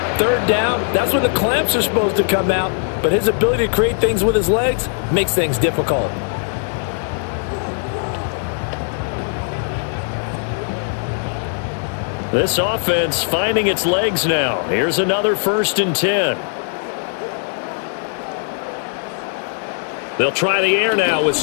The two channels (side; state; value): right; silent; digital silence